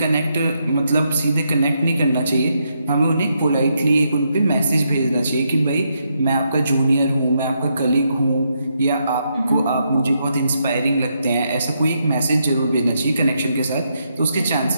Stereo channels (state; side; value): inverted; both; correlation -0.79